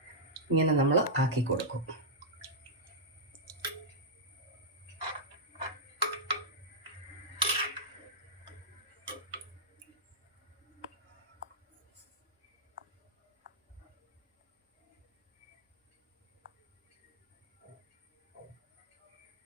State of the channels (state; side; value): normal; both; correlation -0.10